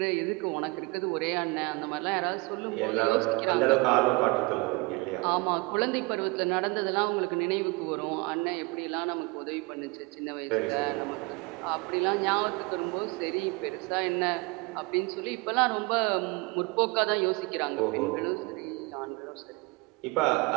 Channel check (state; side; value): quieter; left; 26.4 dB